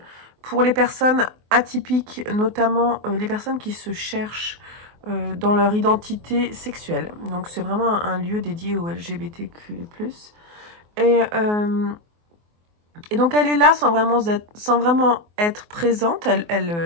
pour les personnes atypiques, notamment les personnes qui se cherchent dans leur identité sexuelle. Donc c'est vraiment un lieu dédié aux LGBTQ+. Et Et donc elle est là sans vraiment être présente,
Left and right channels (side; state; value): left; late; 24 ms